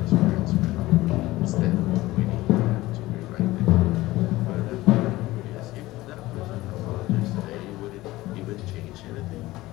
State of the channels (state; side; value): quieter; right; 18.1 dB